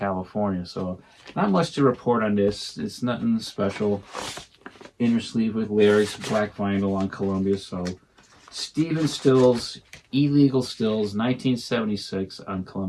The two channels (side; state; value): both; identical; correlation 1.00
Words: So not much to report on this. It's nothing special. Inner sleeve with lyrics, black vinyl on Columbia. So Stephen Stills, Illegal Stills, 1976 on